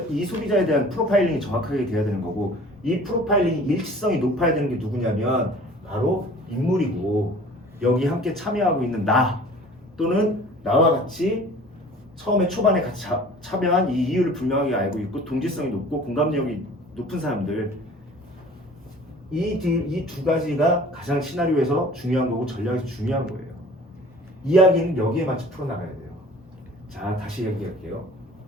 이 소비자에 대한 프로파일링이 정확하게 돼야 되는 거고 이 프로파일링 일치성이 높아야 되는 게 누구냐면 바로 인물이고 여기 함께 참여하고 있는 나 또는 나와 같이 처음에 초반에 같이 참여한 이 이유를 분명하게 알고 있고 동질성이 높고 공감력이 높은 사람들 이 두 가지가 가장 시나리오에서 중요한 거고 전략에서 중요한 거예요. 이야기는 여기에 맞춰 풀어나가야 돼요. 자 다시 얘기할게요.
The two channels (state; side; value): normal; both; correlation 0.47